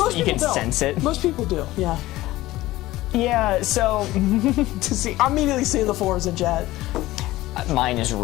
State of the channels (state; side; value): quieter; right; 17.2 dB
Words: you can people don't. sense it. Most people do, yeah. Yeah, so To see, I'm immediately seeing the 4s in chat. mine is